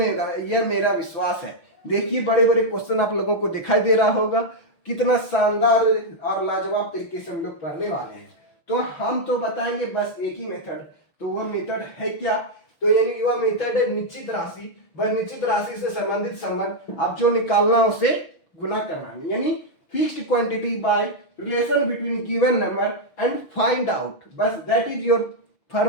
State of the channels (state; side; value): late; right; 6.3 ms